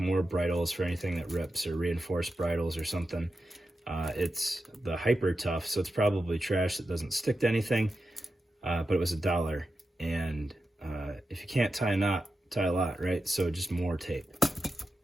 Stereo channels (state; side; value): normal; both; correlation 0.90